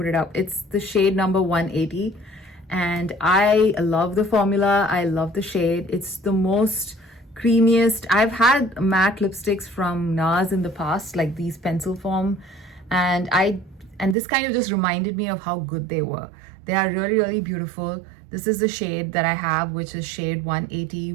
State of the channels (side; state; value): left; drops out; at 14.2 s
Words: it up. It's the shade number 180. And I love the formula. I love the shade. It's the most creamiest. I've had matte lipsticks from NARS in the past, like these pencil form, and this kind of just reminded me of how good they were. They are really, really beautiful. This is the shade that I have, which is shade 180